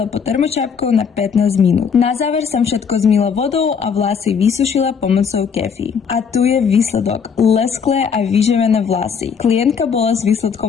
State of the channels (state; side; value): quieter; right; 6.5 dB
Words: pod termočapkou na 15 minút. Na záver som všetko zmýla vodou a vlasy vysušila pomocou kefy. A tu je výsledok. Lesklé a vyživené vlasy. Klientka bola s